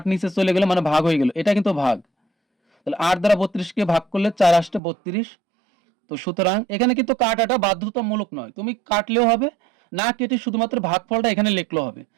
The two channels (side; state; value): left; drops out; at 4.8 s